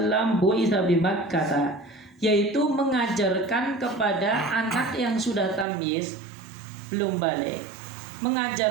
bu'itsa bi Makkah, yaitu mengajarkan kepada anak yang sudah tamyiz belum balik,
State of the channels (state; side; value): drops out; left; at 5.7 s